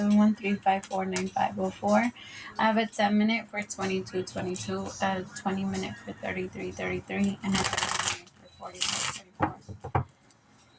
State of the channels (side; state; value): both; identical; correlation 1.00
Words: I have a 10-minute for 2222, a 20-minute for 3333, and a 30-minute for 4434.